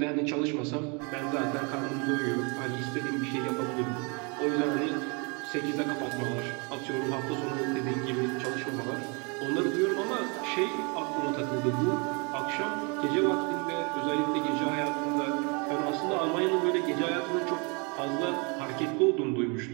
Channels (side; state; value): left; quieter; 32.8 dB